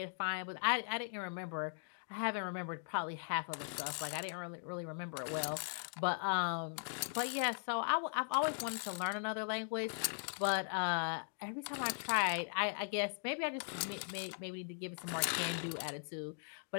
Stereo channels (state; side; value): silent; right; digital silence